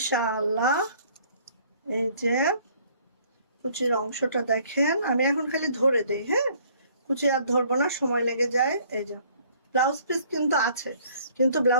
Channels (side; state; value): both; inverted; correlation -0.59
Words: এই যে কুচির অংশটা দেখেন, আমি এখন খালি ধরে দেই, হ্যাঁ কুচি আর ধরবো না, সময় লেগে যায়। এই যে ব্লাউজ পিস কিন্তু আছে, কিন্তু